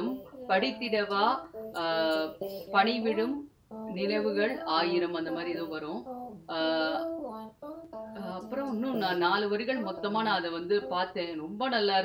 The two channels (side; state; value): both; identical; correlation 1.00